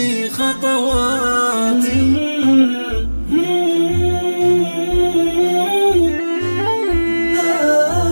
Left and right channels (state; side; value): inverted; both; correlation -1.00